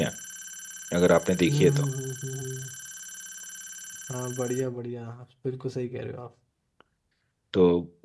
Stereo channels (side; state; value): both; identical; correlation 1.00